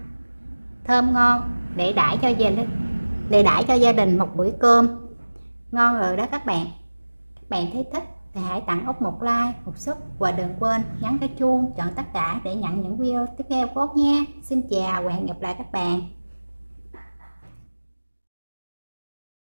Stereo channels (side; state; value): both; inverted; correlation -1.00